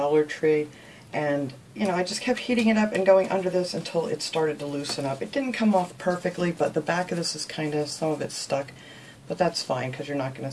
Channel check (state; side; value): identical; both; correlation 1.00